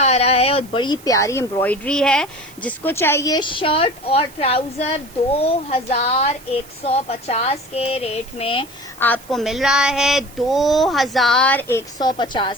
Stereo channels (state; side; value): noise; right; hiss, 22 dB below the sound